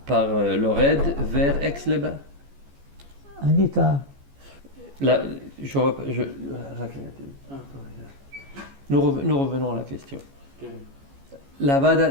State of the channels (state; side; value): late; left; 14 ms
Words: par le raid vers Aix-les-Bains. Anita, nous revenons à la question. La Vada